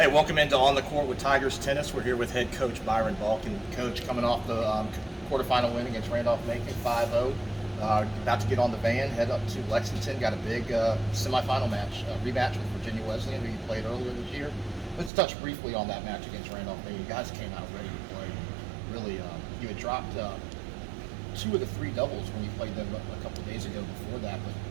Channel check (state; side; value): drops out; left; at 15.1 s